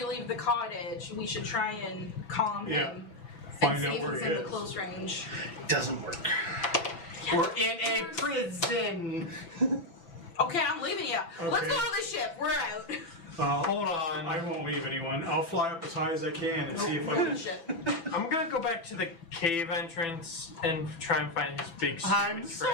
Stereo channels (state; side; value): late; right; 6.0 ms